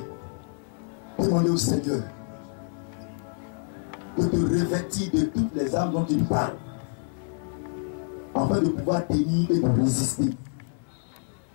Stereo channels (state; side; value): silent; right; 60 dB below the other